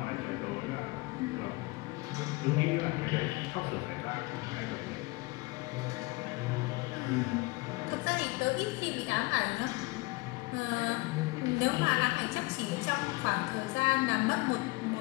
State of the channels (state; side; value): quieter; right; 23.9 dB